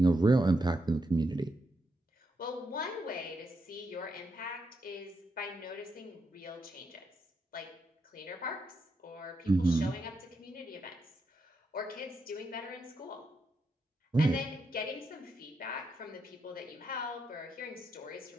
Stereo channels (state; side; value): normal; both; correlation 0.83